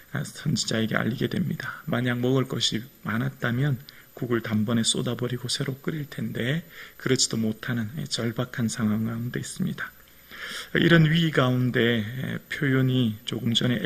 선지자에게 알리게 됩니다. 만약 먹을 것이 많았다면 국을 단번에 쏟아버리고 새로 끓일 텐데 그렇지도 못하는 절박한 상황 가운데 있습니다. 이런 위기 가운데 표현이 조금 전에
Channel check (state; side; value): identical; both; correlation 1.00